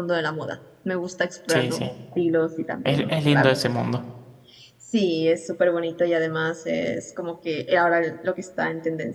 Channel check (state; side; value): identical; both; correlation 1.00